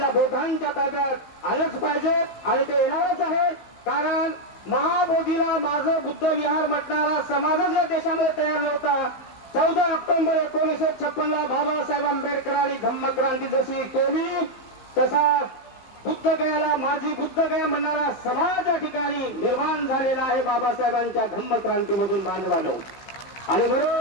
बोधांच्या ताब्यात आलंच पाहिजे आणि ते येणारच आहे, कारण महाबोधीला माझं बुद्ध विहार म्हटणारा समाजच या देशामध्ये तयार नव्हता। 14 ऑक्टोबर 1956 ला बाबासाहेब आंबेडकरांनी धम्मक्रांती जशी केली तसा बुद्धगयाला माझी बुद्धगया म्हणणारा समाज या ठिकाणी निर्माण झालेला आहे बाबासाहेबांच्या धम्मक्रांतीमधून बांधवानो। आणि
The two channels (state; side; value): late; right; 15 ms